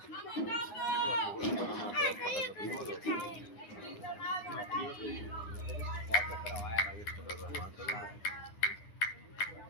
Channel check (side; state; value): right; late; 9.9 ms